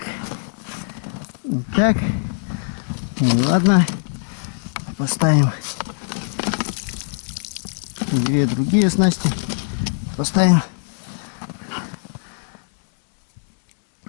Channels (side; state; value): right; silent; digital silence